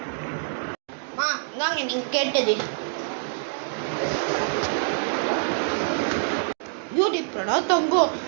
இந்தாங்க நீங்க கேட்டது. யூடியூப் பிரணவ் தங்கம்,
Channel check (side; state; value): left; silent; digital silence